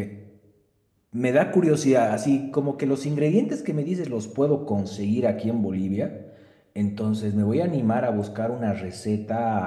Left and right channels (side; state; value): both; identical; correlation 1.00